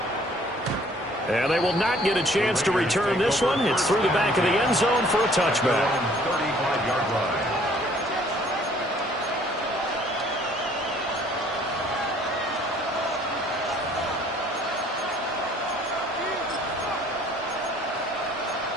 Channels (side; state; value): both; normal; correlation 0.58